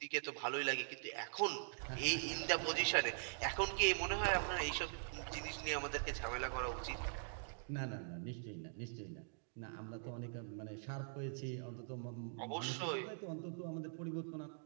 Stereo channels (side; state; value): left; silent; digital silence